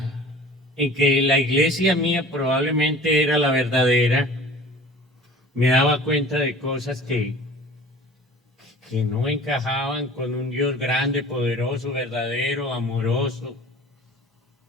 que la iglesia mía probablemente era la verdadera, me daba cuenta de cosas que no encajaban con un Dios grande, poderoso, verdadero, amoroso.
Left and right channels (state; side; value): normal; both; correlation 0.44